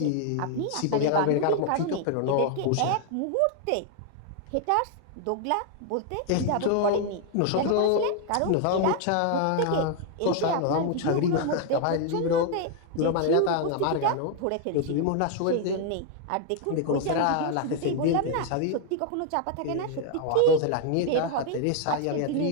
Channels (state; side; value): different; both; correlation 0.00